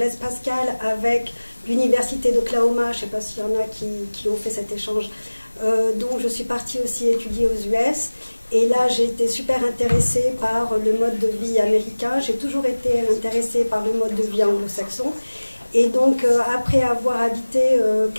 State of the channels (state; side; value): inverted; both; correlation -1.00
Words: Pascal avec l'université d'Oklahoma, je ne sais pas s'il y en a qui ont fait cet échange, donc je suis partie aussi étudier aux US. Et là, j'ai été super intéressée par le mode de vie américain. J'ai toujours été intéressée par le mode de vie anglo-saxon. Et donc, après avoir habité